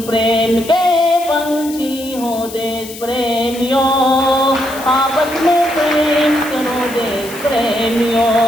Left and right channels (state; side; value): noise; left; hiss, 14 dB below the sound